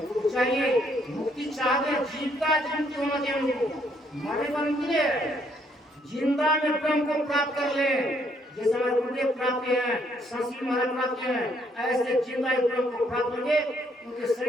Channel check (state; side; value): normal; both; correlation 0.70